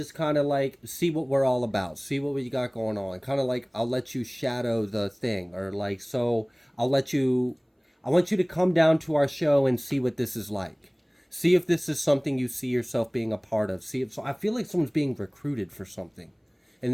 kind of like see what we're all about, see what we got going on. Kind of like, I'll let you shadow the thing, or like, so I want you to come down to our show and see what this is like. See if this is something you see yourself being a part of. So I feel like someone's being recruited for something.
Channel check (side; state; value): both; identical; correlation 1.00